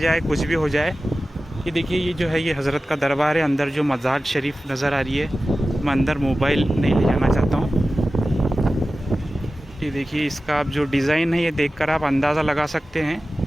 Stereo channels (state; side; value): normal; both; correlation 0.95